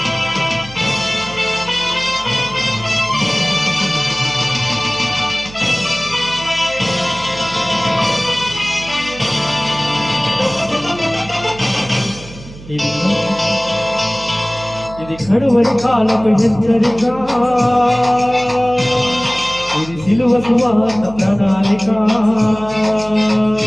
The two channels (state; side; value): noise; right; hum, 17 dB below the sound